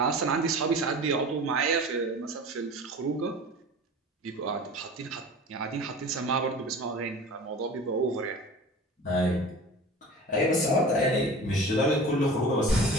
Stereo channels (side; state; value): both; normal; correlation 0.38